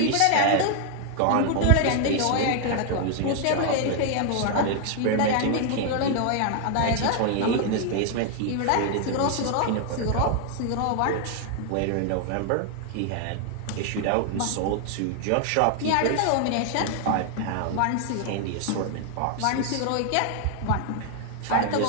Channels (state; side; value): different; both; correlation 0.00